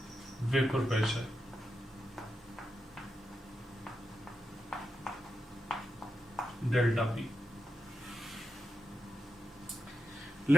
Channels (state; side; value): normal; both; correlation 0.87